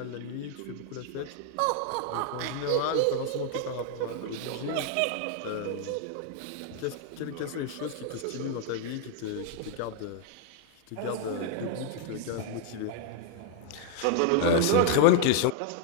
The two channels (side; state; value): both; different; correlation 0.00